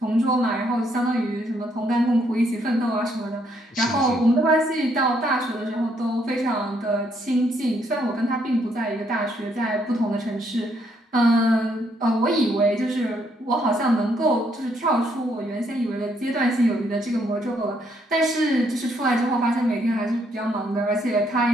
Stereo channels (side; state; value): both; normal; correlation 0.72